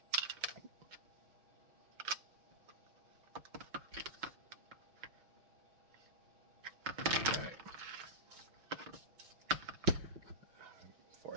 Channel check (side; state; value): left; late; 5.9 ms